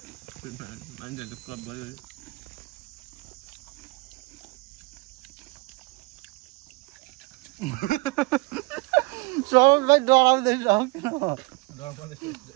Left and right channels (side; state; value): left; quieter; 25.7 dB